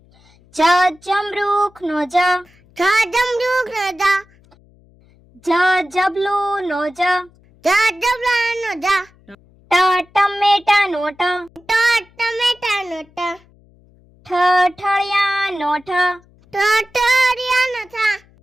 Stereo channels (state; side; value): noise; left; hum, 30 dB below the sound